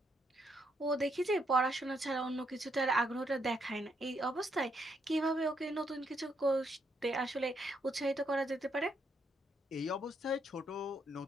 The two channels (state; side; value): normal; both; correlation 0.76